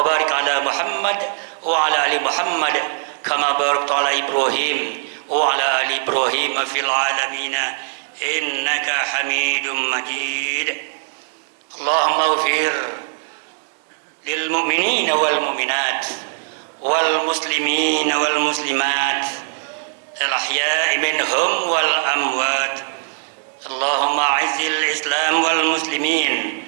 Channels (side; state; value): left; silent; digital silence